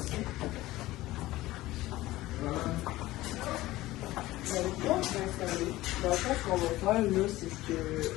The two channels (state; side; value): quieter; right; 17.3 dB